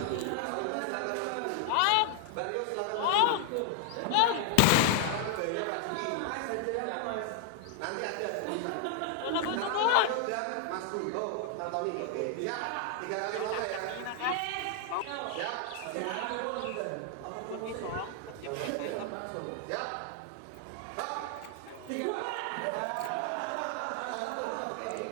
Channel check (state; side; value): different; both; correlation 0.00